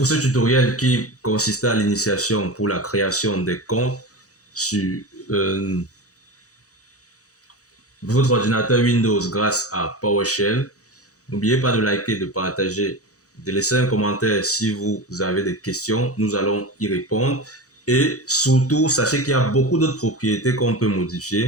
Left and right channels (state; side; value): late; right; 0.66 ms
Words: ce tutoriel qui consistait à l'initiation pour la création des comptes sur votre ordinateur Windows grâce à PowerShell. N'oubliez pas de liker, de partager, de laisser un commentaire si vous avez des questions. Nous allons y répondre. Et surtout, sachez qu'il y a beaucoup d'autres propriétés qu'on peut